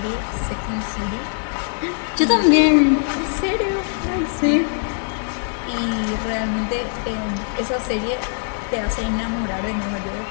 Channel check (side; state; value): right; silent; 59 dB below the other